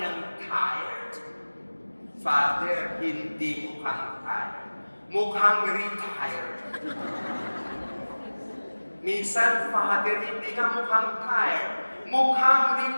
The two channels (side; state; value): both; inverted; correlation -1.00